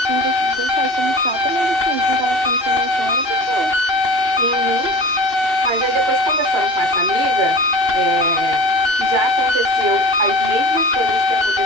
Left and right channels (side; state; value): left; late; 2.8 ms